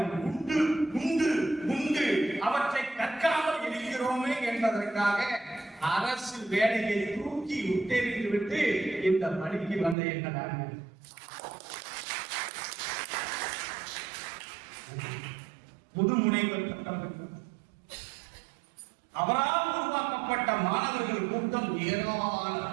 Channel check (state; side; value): drops out; left; at 10.0 s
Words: உண்டு உண்டு உண்டு. அவற்றை கற்காமல் இருக்கிறோமே என்பதற்காக அரசு வேலையை தூக்கி உத்தேறித்து விட்டு இந்த பணிக்கு வந்த எங்கள் முதுமுனைவர் பட்டம் பெற்றவர். அவரால் உருவாக்கப்பட்ட மாணவர்கள் கூட்டம்